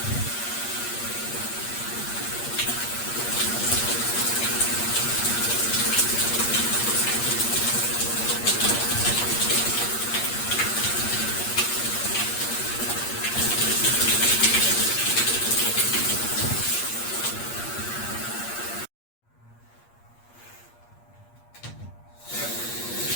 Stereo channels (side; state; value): right; late; 8.5 ms